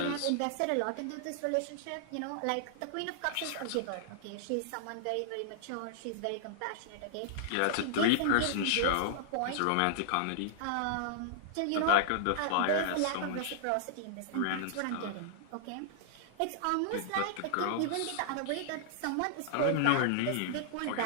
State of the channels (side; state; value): both; different; correlation -0.01